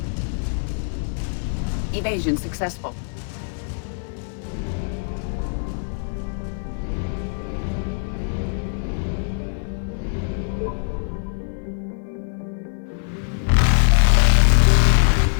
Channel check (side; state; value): right; silent; 62 dB below the other